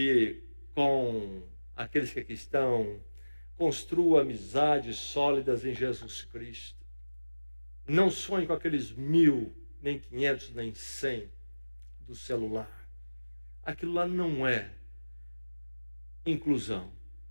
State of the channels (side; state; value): both; inverted; correlation -1.00